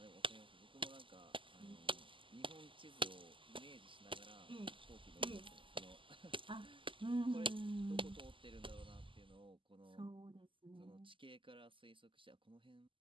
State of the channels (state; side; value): late; left; 0.25 ms